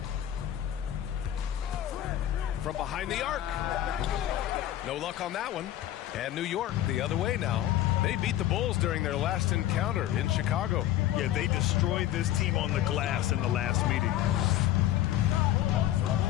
From behind the arc. No luck on that one. And New York the other way now. They beat the Bulls during their last encounter in Chicago. Yeah, they destroyed this team on the glass in the last meeting.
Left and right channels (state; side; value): quieter; right; 12.6 dB